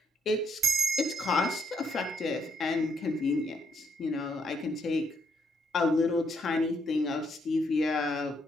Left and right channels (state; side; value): normal; both; correlation 0.74